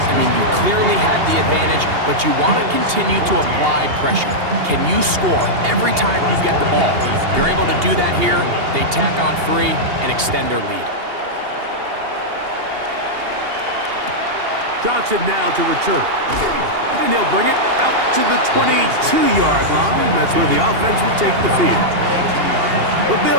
mean, you clearly have the advantage, but you want to continue to apply pressure. Can you score every time you get the ball? You're able to do that here. They tack on 3 and extend their lead. Johnson now to return. And he'll bring it out to the 22-yard line. That's where the offense will take the field. The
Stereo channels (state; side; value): late; left; 2.8 ms